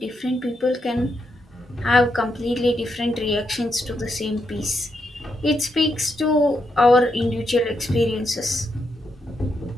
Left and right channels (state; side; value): normal; both; correlation 0.81